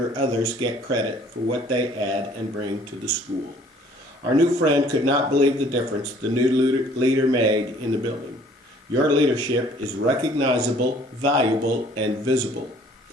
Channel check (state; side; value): normal; both; correlation 0.56